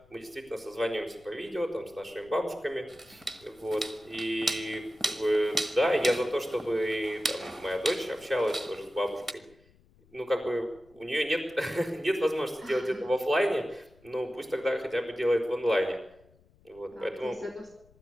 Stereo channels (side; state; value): left; noise; rumble, 29 dB below the sound